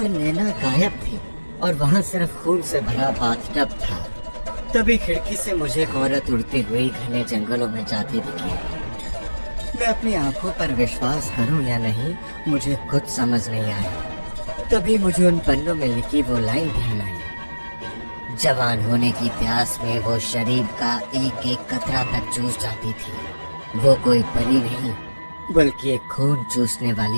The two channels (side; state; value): both; inverted; correlation -1.00